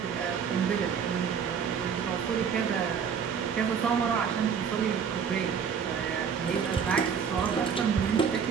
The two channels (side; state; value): left; quieter; 7.0 dB